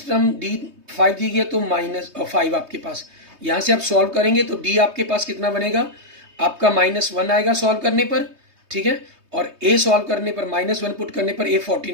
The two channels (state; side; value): late; left; 3.2 ms